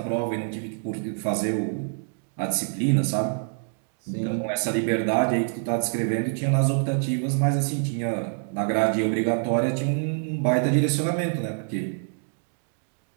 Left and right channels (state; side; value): silent; left; 61 dB below the other